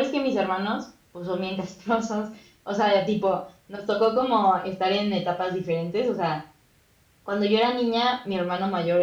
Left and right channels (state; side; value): identical; both; correlation 1.00